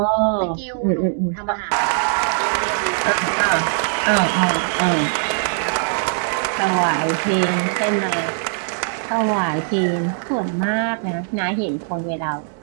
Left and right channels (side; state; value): left; silent; digital silence